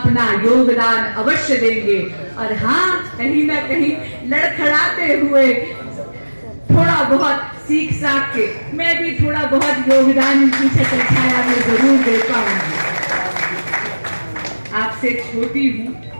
योगदान अवश्य देंगे। और हाँ, कहीं ना कहीं लड़खड़ाते हुए थोड़ा बहुत सीख साख के मैं भी थोड़ा बहुत योगदान इनकी छत्र छाया में जरूर दे पाऊंगी। आपसे छोटी हूं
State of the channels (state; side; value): inverted; both; correlation -1.00